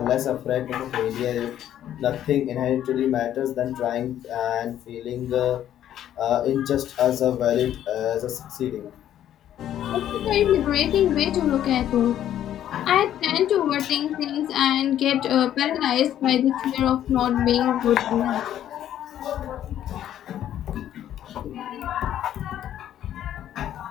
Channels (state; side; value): quieter; right; 11.2 dB